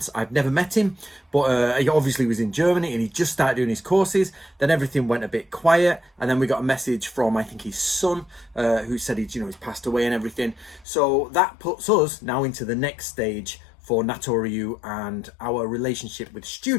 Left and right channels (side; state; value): right; drops out; at 10.9 s